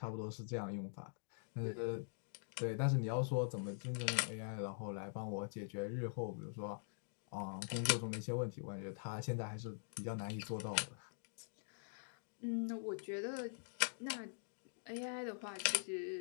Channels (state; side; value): silent; right; digital silence